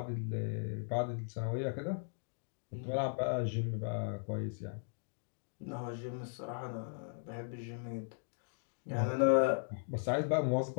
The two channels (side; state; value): right; silent; digital silence